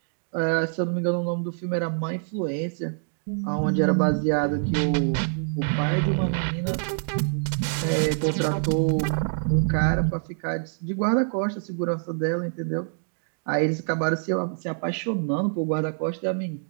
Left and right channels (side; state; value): left; silent; digital silence